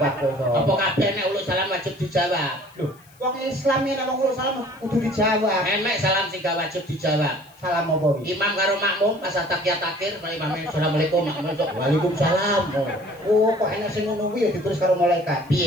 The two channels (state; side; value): noise; left; hiss, 28 dB below the sound